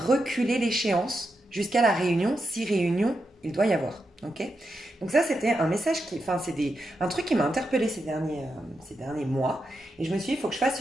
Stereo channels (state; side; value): normal; both; correlation 0.86